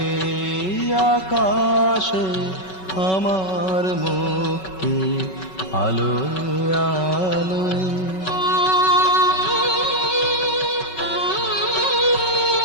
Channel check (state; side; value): late; right; 5.3 ms